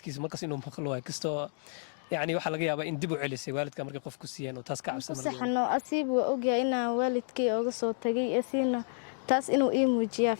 markaas inuu maqlo waay kastoo يعني waxa laga yaabaa in dib u celisay waalidka markay qof ku siiyeen oo taas ka cabsan markaa saxno asiib waa ogyahay in waalidkii uga soo tagay asiina taas inuu ii muujiyaa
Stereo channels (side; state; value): right; silent; digital silence